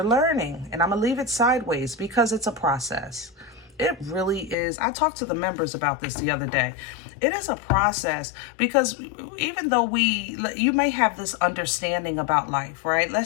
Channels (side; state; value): right; drops out; at 4.5 s